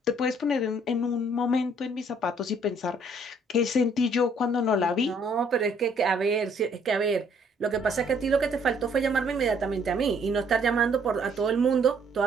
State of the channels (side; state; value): both; normal; correlation 0.63